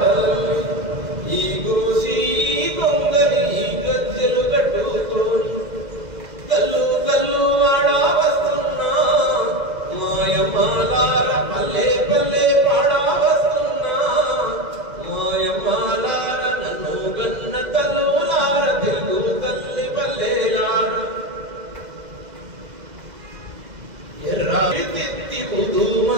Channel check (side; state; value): left; late; 2.0 ms